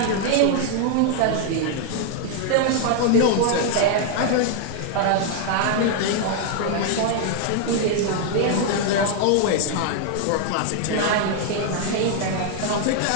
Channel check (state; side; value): different; both; correlation 0.00